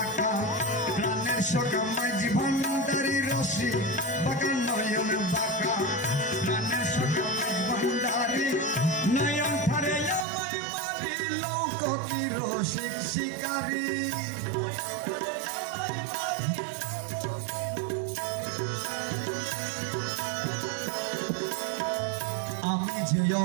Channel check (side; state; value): left; drops out; at 10.2 s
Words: প্রাণের সখা মাঝি ভান্ডারি রশি বাঁকা নয়ন বাঁকা প্রাণের সখা মাঝি ভান্ডারি নয়ন ফারে আমায় মারি লোক কি রসিক শিকারী আমি যে